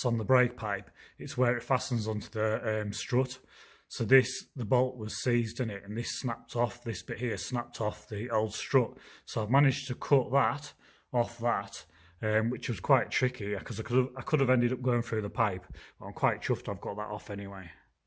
on the brake pipe. It's where it fastens onto the strut. So the bolt was seized in it, and this snapped off. This bit here snapped off the old strut. So I've managed to cut that off that. Which was quite tricky because I could have ended up going through the pipe, but I'm quite chuffed I've got that off anyway.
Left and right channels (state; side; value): identical; both; correlation 1.00